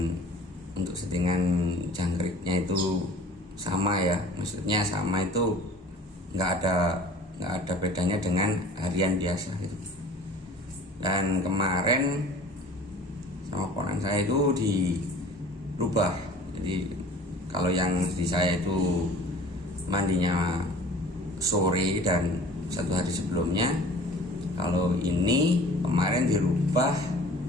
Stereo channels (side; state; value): both; normal; correlation 0.46